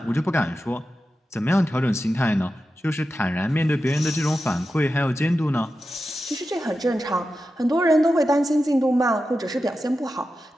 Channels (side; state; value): both; normal; correlation 0.91